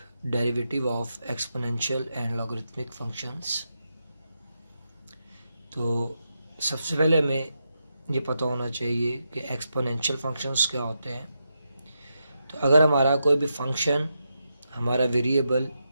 derivative of exponential and logarithmic functions. तो सबसे पहले हमें ये पता होना चाहिए कि एक्सपोनेंशियल फंक्शंस क्या होते हैं। तो अगर हमारा कोई भी फंक्शन, हमारा variable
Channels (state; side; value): inverted; both; correlation -0.85